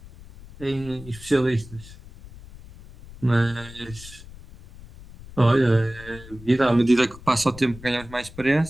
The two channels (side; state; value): left; noise; rumble, 18 dB below the sound